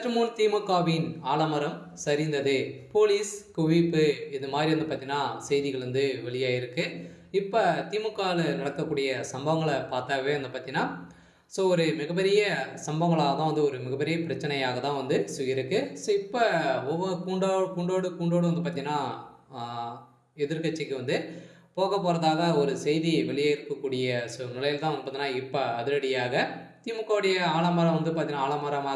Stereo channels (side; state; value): both; identical; correlation 1.00